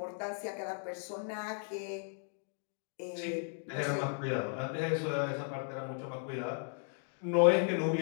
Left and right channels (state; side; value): silent; right; 54 dB below the other